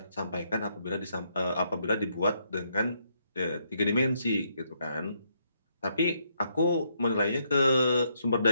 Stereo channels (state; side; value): inverted; both; correlation -0.75